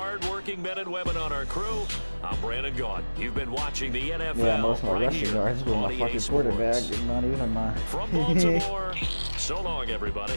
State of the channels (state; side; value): inverted; both; correlation -1.00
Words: men and women on our crew, I'm Brandon Gaughan. You've been watching the NFL. Yeah, most of my right rushing yards with my fucking quarterback. Not even my... From Baltimore, so long,